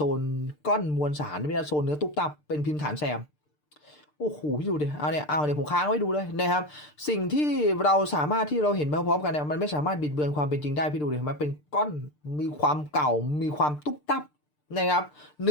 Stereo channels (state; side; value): late; right; 6.7 ms